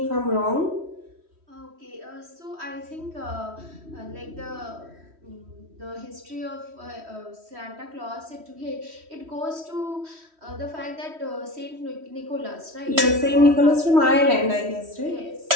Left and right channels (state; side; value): late; left; 3.1 ms